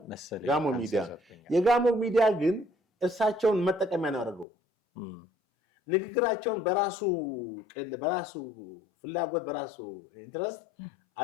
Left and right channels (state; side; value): drops out; right; at 4.5 s